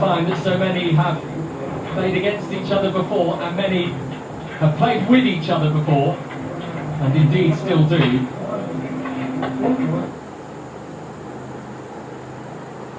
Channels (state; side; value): identical; both; correlation 1.00